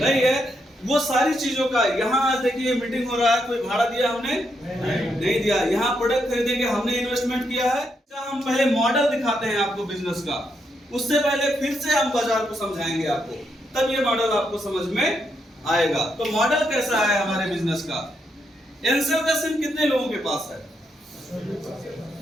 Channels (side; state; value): both; normal; correlation 0.79